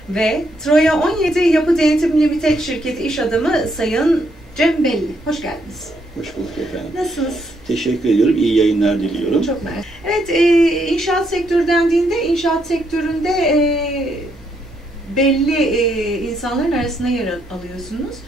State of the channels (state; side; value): normal; both; correlation 0.75